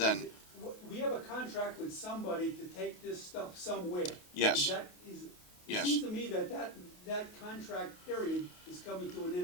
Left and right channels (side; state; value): right; late; 28 ms